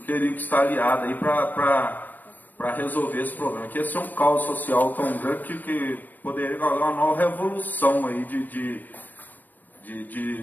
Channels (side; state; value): right; late; 0.087 ms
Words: teriam que estar aliadas aí para resolver esse problema. Que ia ser um caos social tão grande que poderia causar uma nova revolução aí